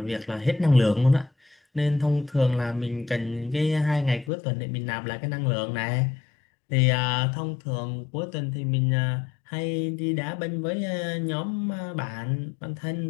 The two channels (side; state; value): right; drops out; at 4.3 s